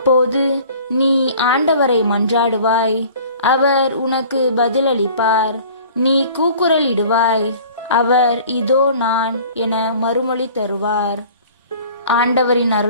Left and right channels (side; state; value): both; inverted; correlation -0.47